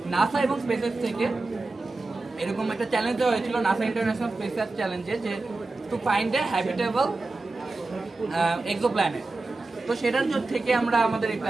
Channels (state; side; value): quieter; left; 3.3 dB